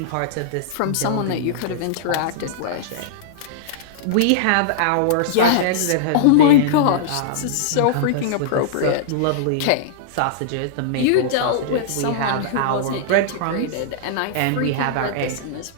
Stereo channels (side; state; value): both; different; correlation -0.02